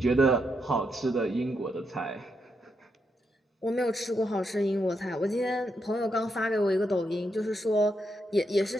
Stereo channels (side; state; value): both; normal; correlation 0.81